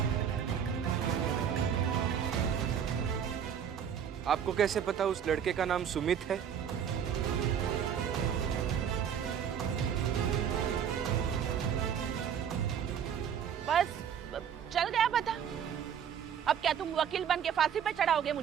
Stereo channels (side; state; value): left; quieter; 8.4 dB